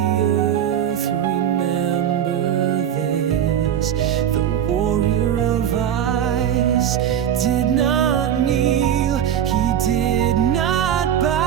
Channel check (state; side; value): quieter; left; 9.6 dB